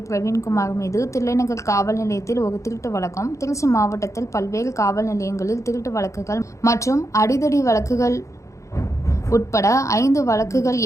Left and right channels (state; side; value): late; right; 0.15 ms